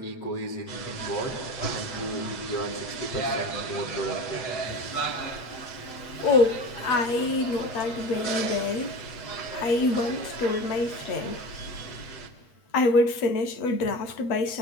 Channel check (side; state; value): right; late; 8.2 ms